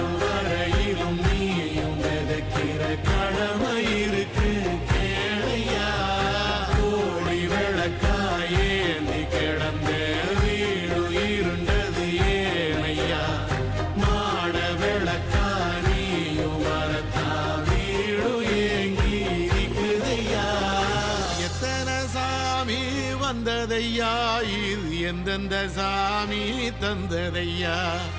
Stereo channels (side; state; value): both; identical; correlation 1.00